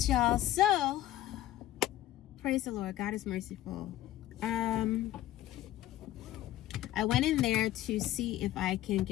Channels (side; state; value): right; quieter; 14.1 dB